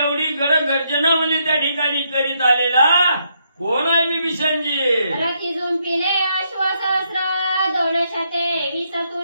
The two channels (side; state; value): both; inverted; correlation -0.76